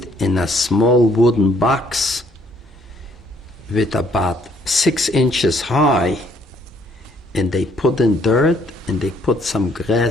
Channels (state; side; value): normal; both; correlation 0.65